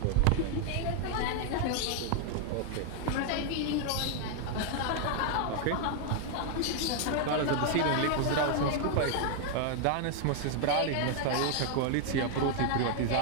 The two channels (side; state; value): both; different; correlation 0.00